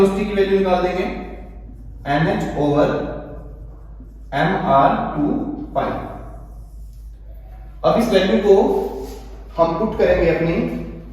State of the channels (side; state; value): both; identical; correlation 1.00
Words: की वैल्यू निकाल देंगे nh ओवर mr 2 पाई। अब इस वैल्यू को हम पुट करेंगे अपनी